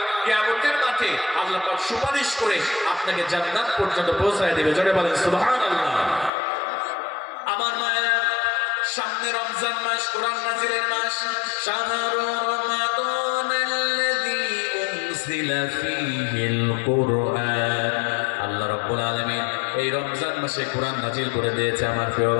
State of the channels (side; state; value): right; drops out; at 6.3 s